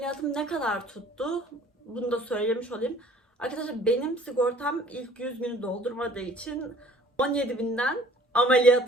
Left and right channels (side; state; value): both; normal; correlation 0.53